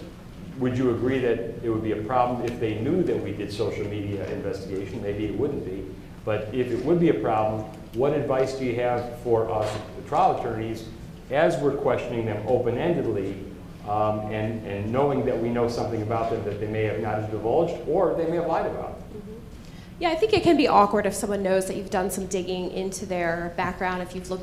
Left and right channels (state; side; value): identical; both; correlation 1.00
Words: would you agree that it would be a problem if they knew that we did social media investigation? Maybe it wouldn't be. But if it would be a problem, what advice do you have for us, the trial attorneys, as we're questioning them open-endedly and knowing that we know something about them that they may have not divulged or they may have lied about? Yeah, I think it can be awkward if someone knows that you've done some digging into their background, if you've